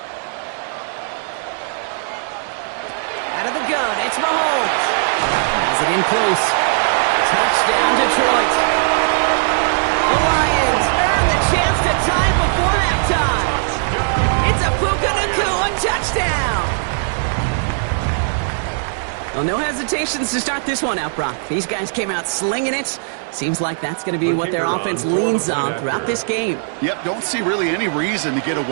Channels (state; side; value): silent; left; digital silence